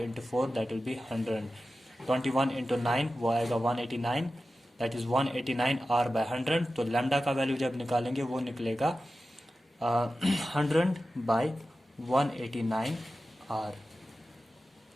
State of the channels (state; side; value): normal; both; correlation 0.93